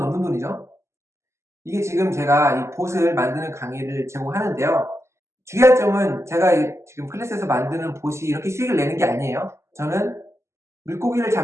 돈이죠. 이게 지금 제가 이 봇을 만드는 강의를 제공하는데요. 주의할 점은, 제가 지금 클래스에서 만드는 봇이 이렇게 수익을 내는 게 아니에요. 저는 물고기를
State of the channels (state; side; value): late; left; 0.13 ms